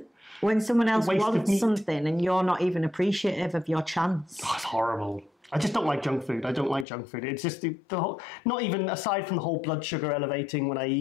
when someone else wants something and you're not even appreciative of your chance. Oh, it's horrible. I just don't like junk food. I don't like junk food. It's just the whole, not even aside from the whole blood sugar elevating when I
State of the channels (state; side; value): drops out; right; at 6.9 s